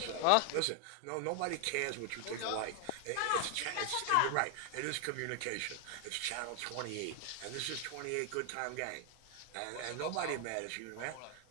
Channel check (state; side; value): different; both; correlation 0.00